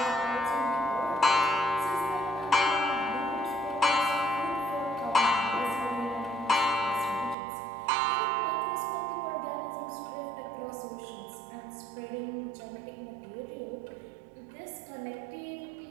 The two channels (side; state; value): left; drops out; at 7.4 s